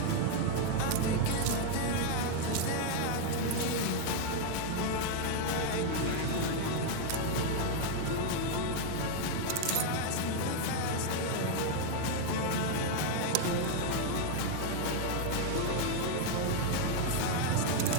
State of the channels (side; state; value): both; different; correlation 0.00